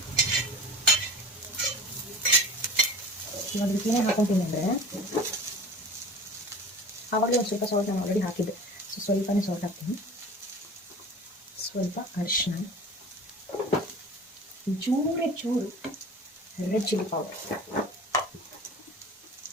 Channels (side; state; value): both; normal; correlation 0.39